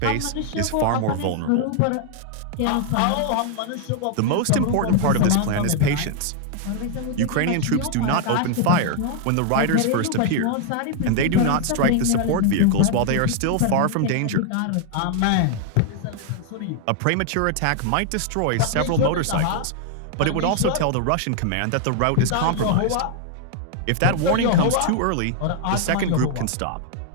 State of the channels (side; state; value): both; different; correlation 0.00